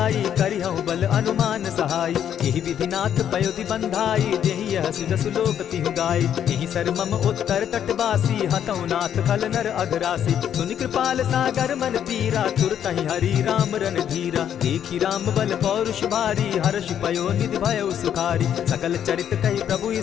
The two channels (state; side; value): quieter; right; 9.5 dB